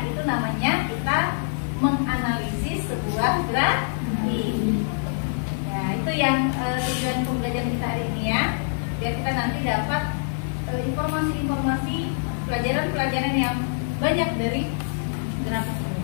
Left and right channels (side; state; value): right; silent; digital silence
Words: itu namanya kita menganalisis sebuah grafik. Ya, itu yang tujuan pembelajaran kita hari ini ya. Biar kita nanti dapat informasi-informasi pelajaran-pelajaran yang banyak dari grafik ini.